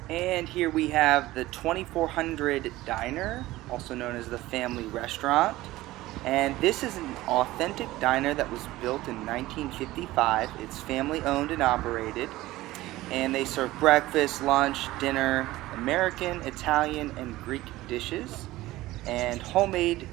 And here we have the 2400 Diner, also known as the Family Restaurant. And this is an authentic diner that was built in 1955. It's family owned and operated. And they serve breakfast, lunch, dinner, American, Italian, and Greek dishes, and homemade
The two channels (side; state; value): left; quieter; 17.4 dB